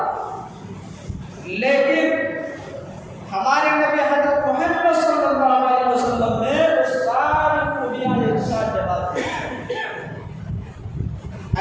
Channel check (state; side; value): identical; both; correlation 1.00